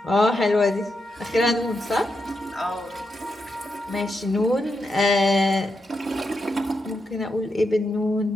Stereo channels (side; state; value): both; normal; correlation 0.85